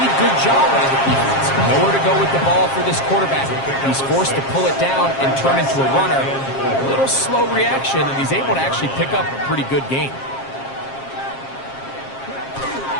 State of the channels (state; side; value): late; right; 7.4 ms